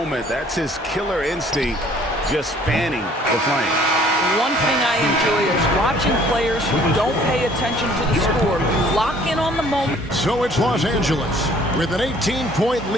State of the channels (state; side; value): normal; both; correlation 0.56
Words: That's his killer instinct, just fanning the flame. One thing I enjoy is watching players who don't pay attention to the score lock in on the moment. So it's Los Angeles with an 18-point